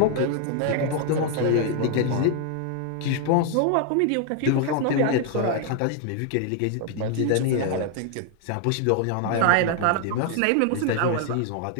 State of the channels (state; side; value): different; both; correlation 0.00